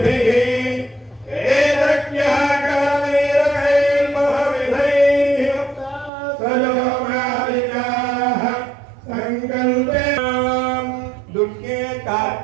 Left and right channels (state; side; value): drops out; left; at 6.1 s